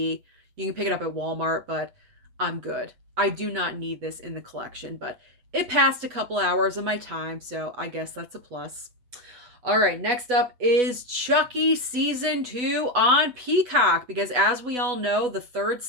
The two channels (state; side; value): late; left; 8.1 ms